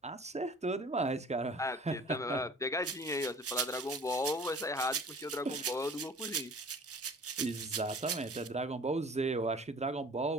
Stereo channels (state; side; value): normal; both; correlation 0.47